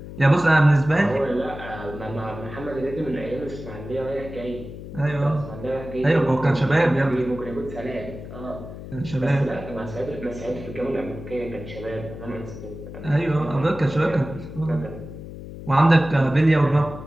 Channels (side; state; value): left; noise; hum, 12 dB below the sound